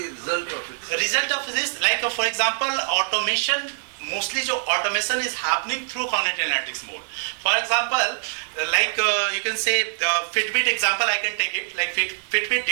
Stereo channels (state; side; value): silent; left; 63 dB below the other